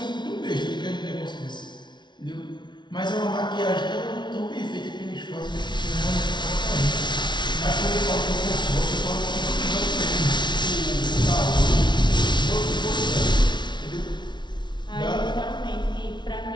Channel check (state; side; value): late; right; 0.22 ms